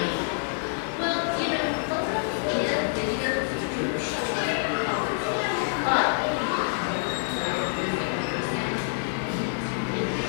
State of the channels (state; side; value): silent; right; 57 dB below the other